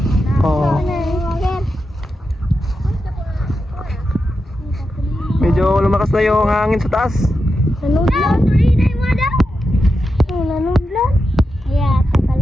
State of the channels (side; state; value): both; normal; correlation 0.88